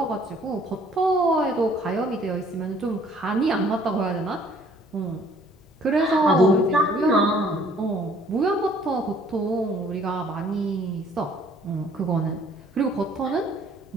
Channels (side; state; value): both; normal; correlation 0.58